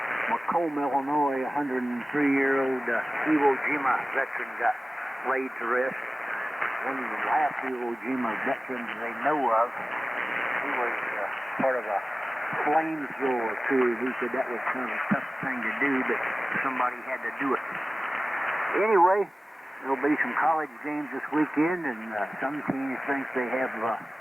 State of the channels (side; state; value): both; normal; correlation 0.97